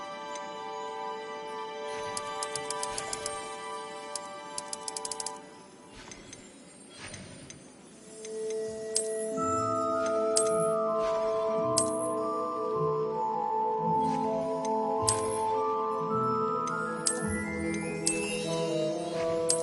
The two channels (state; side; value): identical; both; correlation 1.00